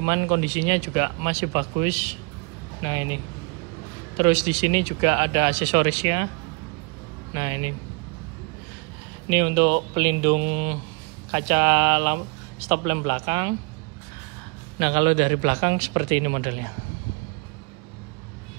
kondisinya juga masih bagus. Nah, ini. Terus di sini juga ada aksesorisnya. Nah, ini. Ini untuk pelindung kaca stop lamp belakang. Nah, kalau dari belakang seperti ini modelnya.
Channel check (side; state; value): left; quieter; 31.7 dB